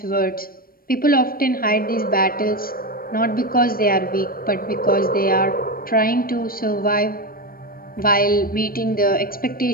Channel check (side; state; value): right; late; 0.43 ms